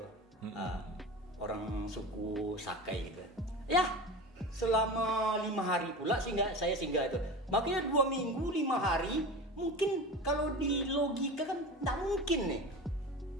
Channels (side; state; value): both; normal; correlation 0.30